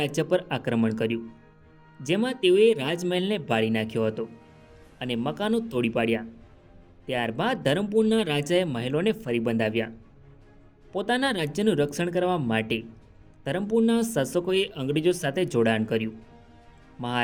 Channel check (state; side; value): identical; both; correlation 1.00